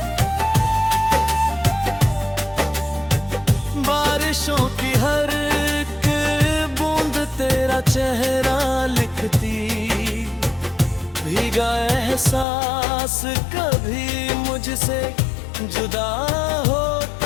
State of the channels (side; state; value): right; drops out; at 12.5 s